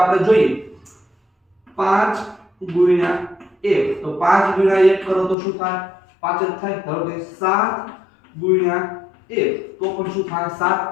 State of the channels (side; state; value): right; drops out; at 5.4 s